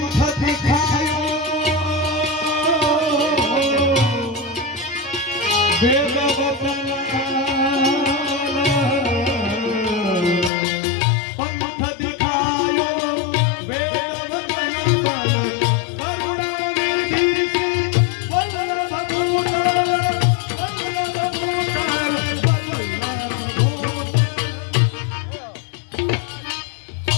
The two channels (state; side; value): drops out; right; at 10.5 s